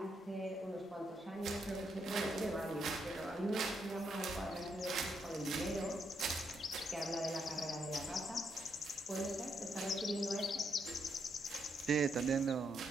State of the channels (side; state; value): both; normal; correlation 0.78